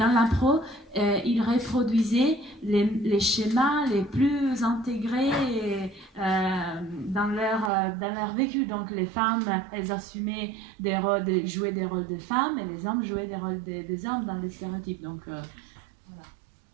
l'impro, ils reproduisaient les schémas les plus intégrés dans leur vécu. Donc les femmes, elles assumaient jouaient des rôles de femmes, et les hommes jouaient des rôles des hommes dans les stéréotypes. Donc voilà.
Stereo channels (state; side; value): drops out; left; at 7.7 s